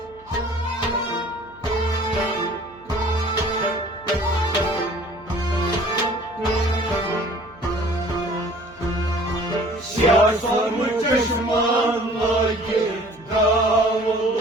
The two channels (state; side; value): noise; right; hum, 27 dB below the sound